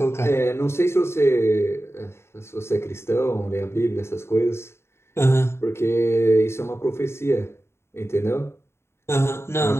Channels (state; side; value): late; right; 0.12 ms